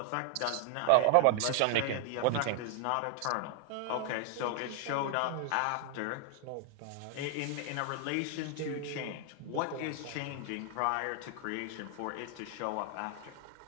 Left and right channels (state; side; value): different; both; correlation 0.00